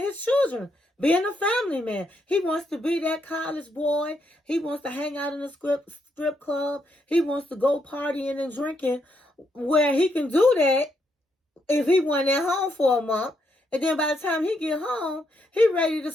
his children. Being a family man. He wants to be that college boy. He wants to hang out in a strip club. He wants to go partying and drinking, where he can do that if he went at home for a month. And then by the time he get home, he ready to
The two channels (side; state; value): both; normal; correlation 0.77